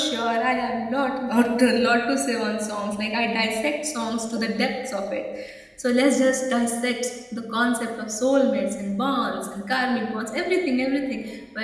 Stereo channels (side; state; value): both; identical; correlation 1.00